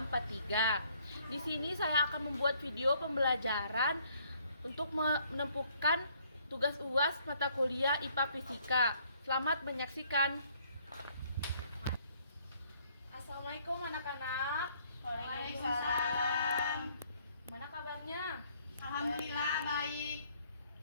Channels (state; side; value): inverted; both; correlation -0.64